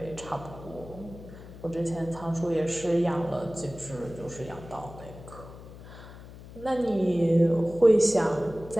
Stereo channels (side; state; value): left; noise; hum, 16 dB below the sound